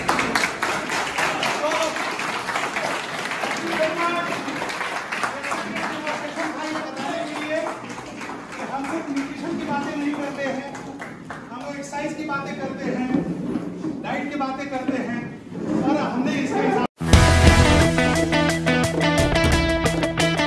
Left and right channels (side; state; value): both; identical; correlation 1.00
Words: एक्सरसाइज की बातें करते हैं, डाइट की बातें करते हैं।